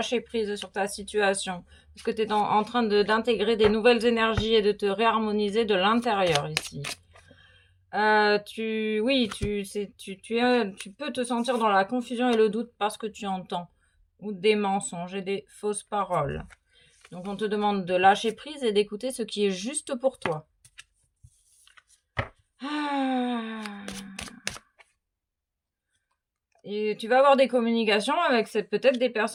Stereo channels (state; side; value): identical; both; correlation 1.00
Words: prise sur ta situation. Parce que tu es en train d'intégrer des nouvelles énergies et de te réharmoniser de l'intérieur ici. Tu peux te sentir dans la confusion et le doute parce que tu entends ou des mensonges et des fausses paroles. Donc on te demande de lâcher prise et d'écouter ce qui est juste pour toi. Et tu vas avoir des communications avec peut-être des